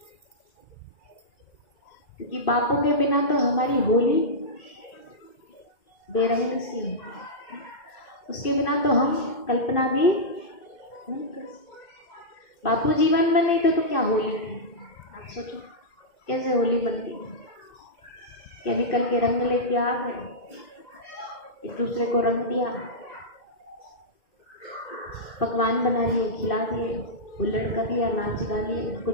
क्योंकि बापू के बिना तो हमारी होली बेरंग सी है, उसके बिना तो हम कल्पना भी नहीं कर सकते। बापू जीवन में नहीं थे तो क्या होली थी? आप सोचो कैसे होली बनती है। केमिकल के रंग लेके आ गए, एक दूसरे को रंग दिया, पकवान बना लिए, खिला दिए, हुल्लड़ कर दिया, नाच गा लिए, कुछ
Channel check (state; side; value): late; right; 2.6 ms